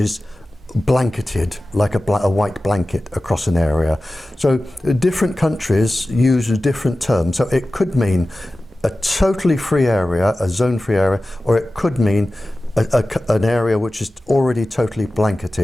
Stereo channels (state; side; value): normal; both; correlation 0.95